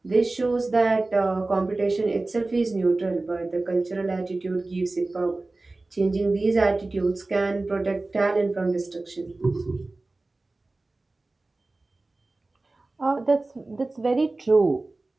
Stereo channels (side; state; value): left; quieter; 3.1 dB